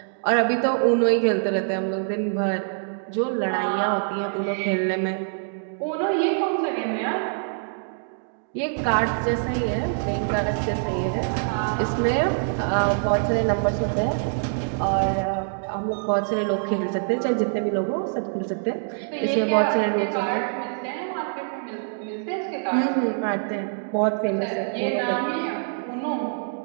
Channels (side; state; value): left; silent; digital silence